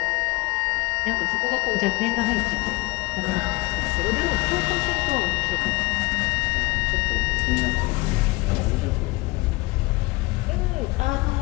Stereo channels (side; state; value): right; quieter; 22.8 dB